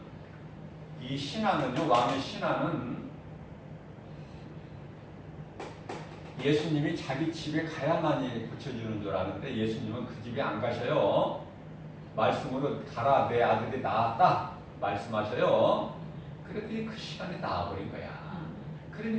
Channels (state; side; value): identical; both; correlation 1.00